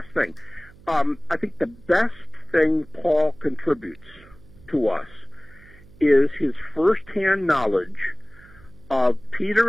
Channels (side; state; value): right; noise; hum, 24 dB below the sound